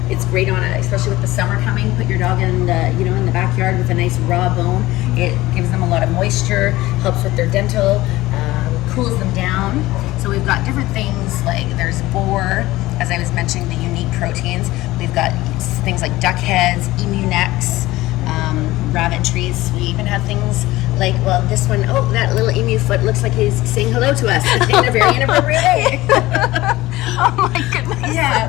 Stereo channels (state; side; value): quieter; right; 17.9 dB